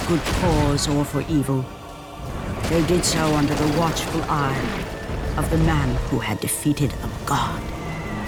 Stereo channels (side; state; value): both; identical; correlation 1.00